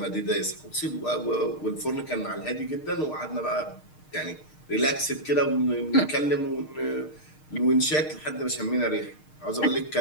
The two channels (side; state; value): right; late; 6.5 ms